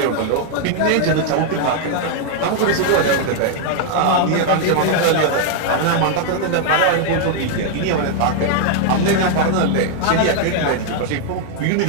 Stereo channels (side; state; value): both; different; correlation 0.00